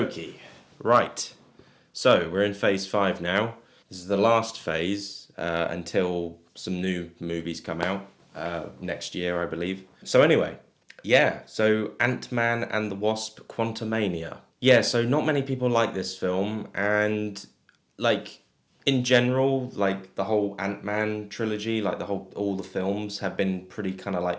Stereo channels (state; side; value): identical; both; correlation 1.00